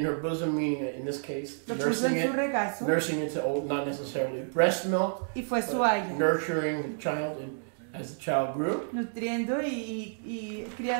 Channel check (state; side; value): silent; left; digital silence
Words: in her bosom, meaning in this case, Lo puso nursing en su it, regazo nursing it to old, not necessarily breast milk, y fue su but haya. nurturing the child as the child grew. Nutriendo y